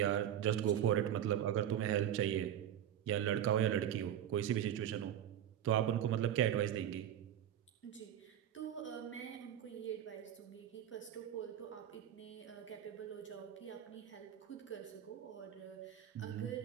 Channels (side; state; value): left; quieter; 10.5 dB